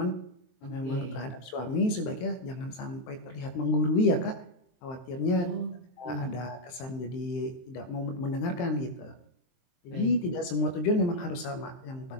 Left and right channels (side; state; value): right; late; 23 ms